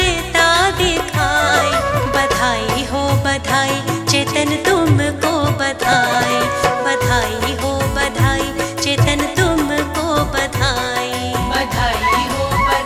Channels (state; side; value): identical; both; correlation 1.00